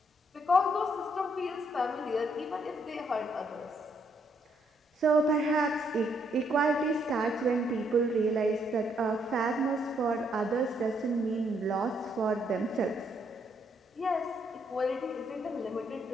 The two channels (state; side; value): normal; both; correlation 0.72